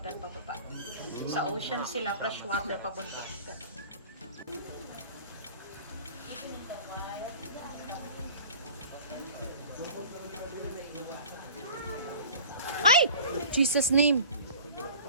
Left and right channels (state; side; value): inverted; both; correlation -0.42